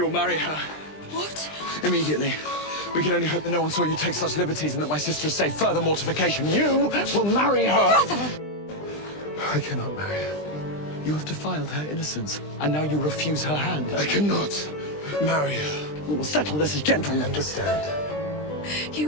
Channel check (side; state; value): right; late; 20 ms